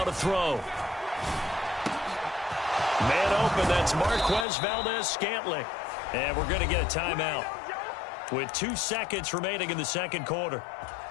to throw. Man open, that's Marquez Valdez-Scantling. And we're going to get a timeout with 2 seconds remaining in the second quarter.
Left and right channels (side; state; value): right; drops out; at 4.5 s